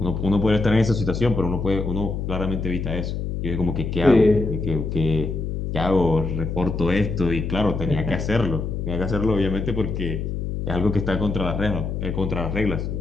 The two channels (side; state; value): left; noise; hum, 3 dB below the sound